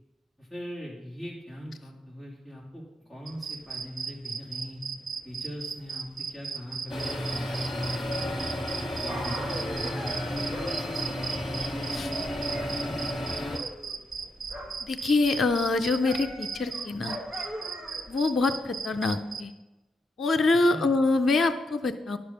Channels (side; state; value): both; normal; correlation 0.81